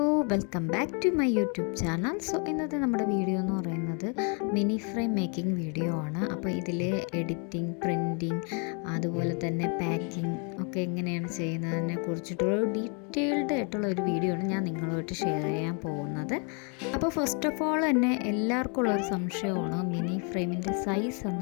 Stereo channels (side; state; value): right; quieter; 36.9 dB